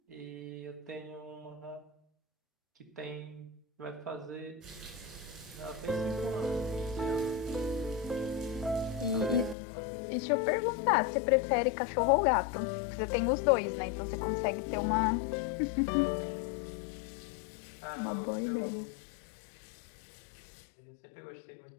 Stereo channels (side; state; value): right; drops out; at 9.6 s